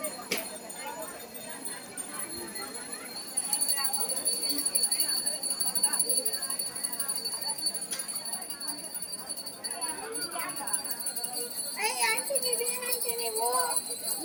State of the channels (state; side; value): identical; both; correlation 1.00